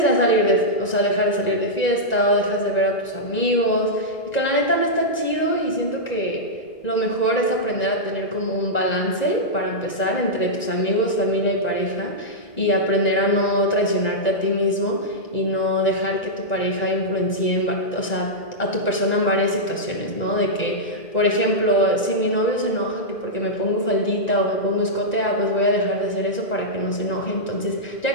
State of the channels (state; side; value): late; right; 1.9 ms